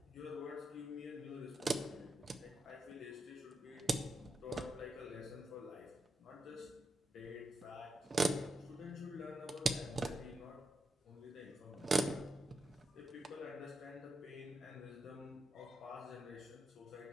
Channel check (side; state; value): both; normal; correlation 0.85